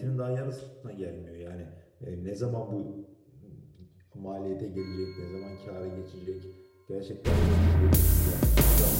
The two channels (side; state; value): both; identical; correlation 1.00